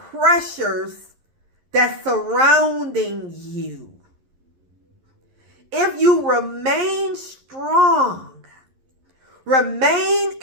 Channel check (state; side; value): late; left; 11 ms